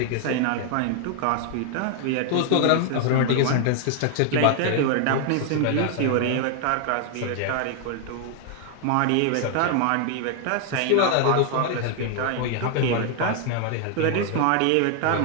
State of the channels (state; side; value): different; both; correlation 0.00